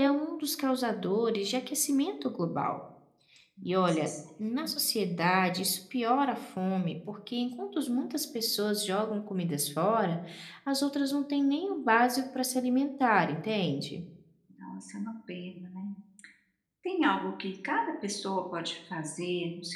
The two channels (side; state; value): both; identical; correlation 1.00